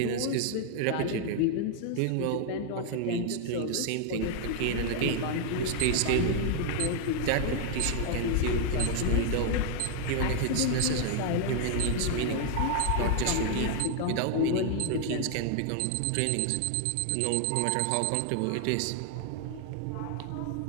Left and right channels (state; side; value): different; both; correlation 0.00